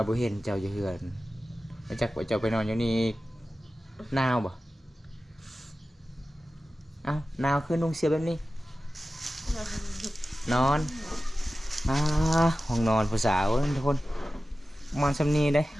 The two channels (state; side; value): normal; both; correlation 0.95